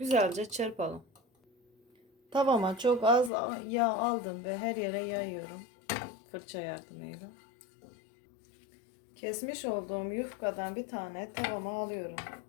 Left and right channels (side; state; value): right; drops out; at 3.3 s